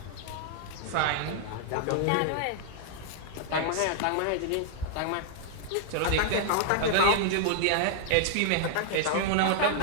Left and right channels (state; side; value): different; both; correlation -0.01